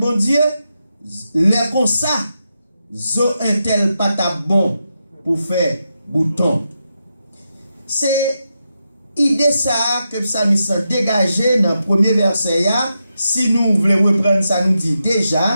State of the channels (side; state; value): both; inverted; correlation -0.86